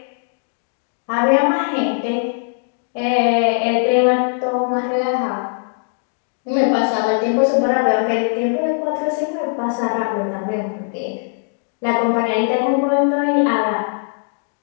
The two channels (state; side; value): silent; right; digital silence